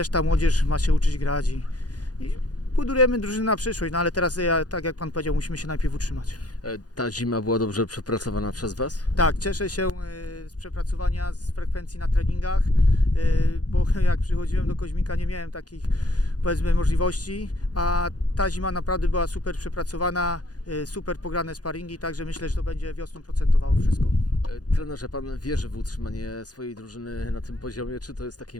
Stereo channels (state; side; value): late; right; 0.68 ms